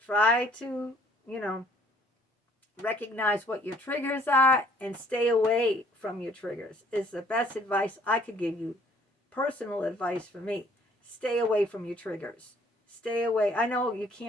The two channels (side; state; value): both; normal; correlation 0.60